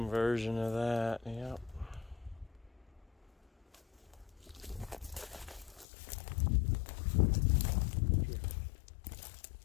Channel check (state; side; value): drops out; right; at 5.9 s